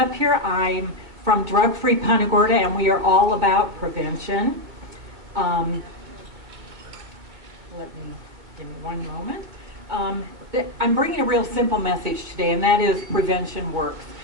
here. I'm from Drug Free Punta Gorda, and we are all about prevention. Give me one moment. I'm bringing a real simple message today, and that is prevention works.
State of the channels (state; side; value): late; left; 2.1 ms